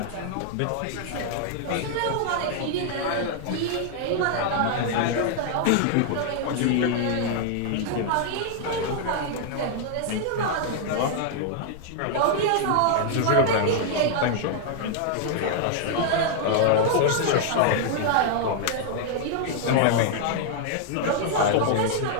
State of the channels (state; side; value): different; both; correlation 0.00